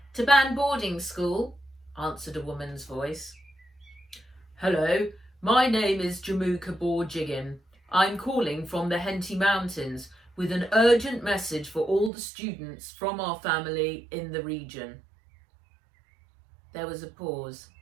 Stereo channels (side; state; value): left; drops out; at 12.1 s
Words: Taban boarding school, answered a woman's voice. Hello, my name is Jamuka Borjigan. I'm calling from the Henty Mountains with an urgent message for all the students from our family in the region. There was a pause.